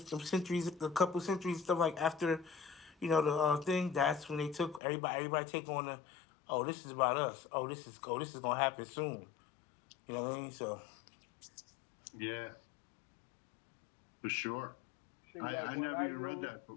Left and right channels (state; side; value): drops out; right; at 4.8 s